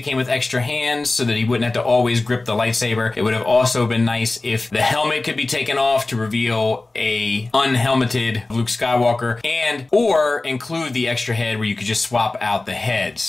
with extra hands so that he wouldn't have to always grip the lightsaber. It would have also been nice if the helmet could be taken off to reveal a unhelmeted Luke Skywalker, or include the extra head where you could just swap out the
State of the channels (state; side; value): quieter; right; 3.1 dB